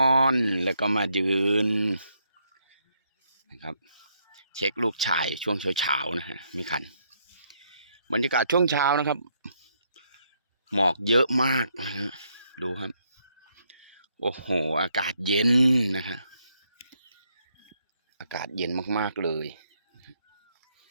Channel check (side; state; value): both; inverted; correlation -0.74